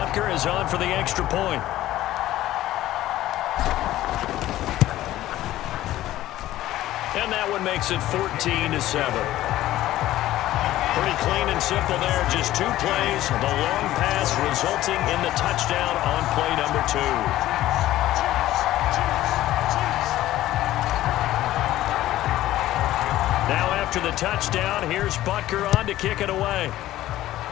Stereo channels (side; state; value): right; quieter; 14.7 dB